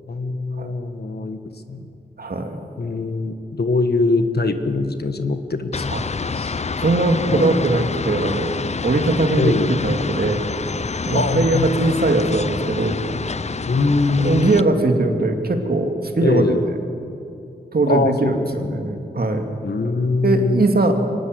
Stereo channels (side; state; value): both; normal; correlation 0.61